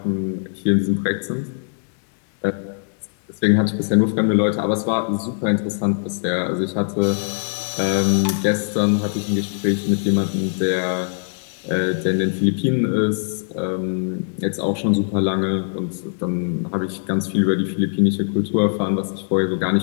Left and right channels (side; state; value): right; silent; 61 dB below the other